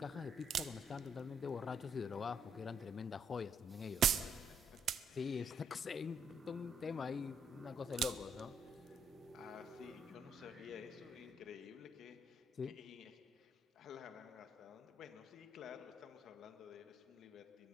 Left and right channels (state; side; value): normal; both; correlation 0.70